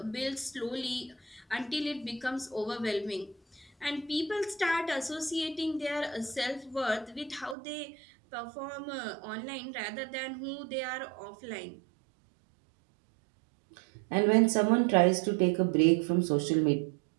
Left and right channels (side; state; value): left; drops out; at 7.6 s